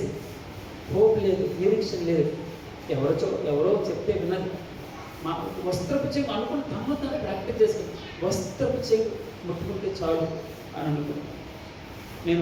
హోప్ లేదు, నిరీక్షణ లేదు. ఎవరో చెప్తే విన్నది. మా వస్త్రపు చెంగు అనుకుని తను ప్రాక్టీస్ చేసుకుని వస్త్రపు చెంగు ముట్టుకుంటే చాలు అని అనుకున్నాను.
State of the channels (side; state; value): both; identical; correlation 1.00